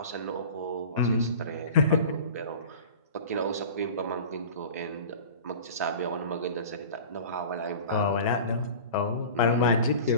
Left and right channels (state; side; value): inverted; both; correlation -0.38